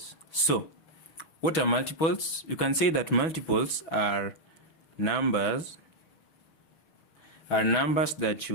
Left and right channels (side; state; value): right; late; 6.2 ms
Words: So what are multiples? You can say that multiples are numbers that